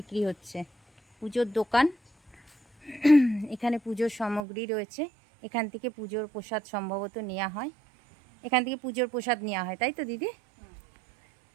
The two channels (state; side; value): drops out; left; at 4.4 s